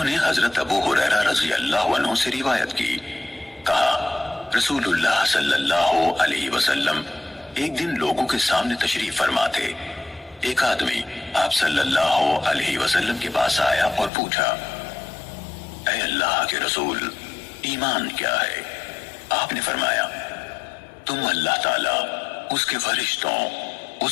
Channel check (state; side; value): drops out; right; at 14.1 s